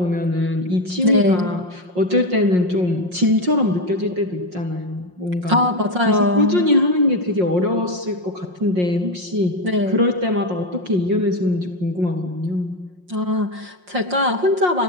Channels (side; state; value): left; late; 5.6 ms